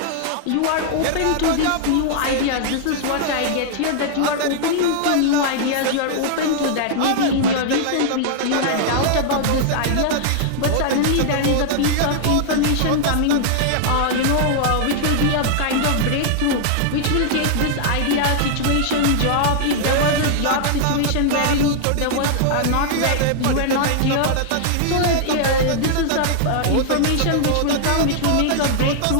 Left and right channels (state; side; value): different; both; correlation -0.01